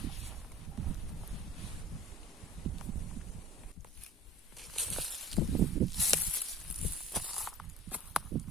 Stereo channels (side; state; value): both; normal; correlation 0.42